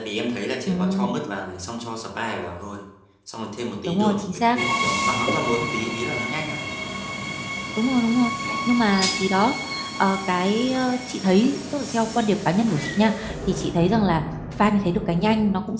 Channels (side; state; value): both; identical; correlation 1.00